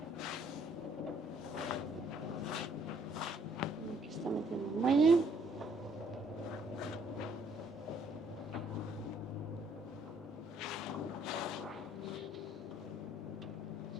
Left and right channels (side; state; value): both; normal; correlation 0.65